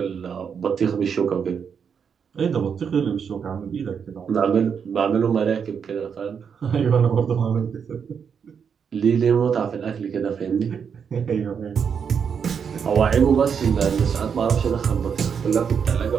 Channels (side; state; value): left; quieter; 6.9 dB